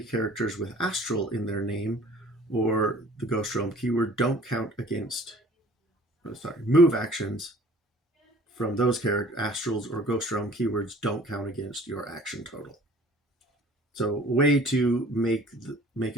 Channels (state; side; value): normal; both; correlation 0.50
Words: with astral in their name or the Ghost Realm keyword don't count against... Move actions from those astrals or Ghost Realm keywords don't count against your action total. So a way to make